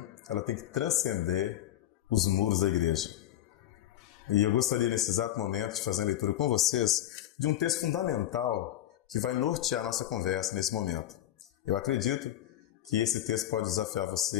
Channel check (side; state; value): right; quieter; 12.9 dB